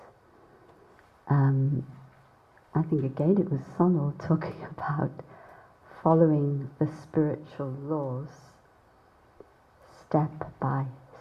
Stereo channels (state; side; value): identical; both; correlation 1.00